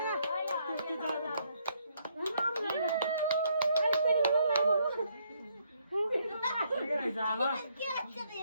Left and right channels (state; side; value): inverted; both; correlation -0.71